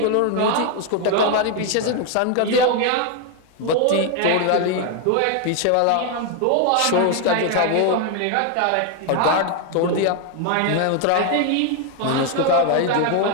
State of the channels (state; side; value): different; both; correlation 0.01